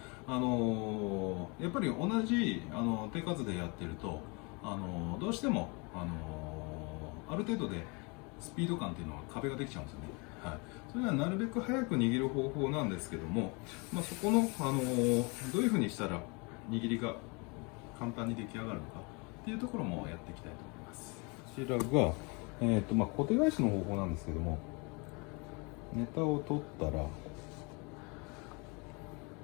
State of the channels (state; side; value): quieter; right; 30.4 dB